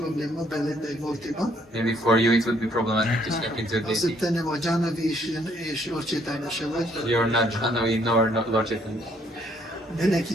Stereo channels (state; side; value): normal; both; correlation 0.67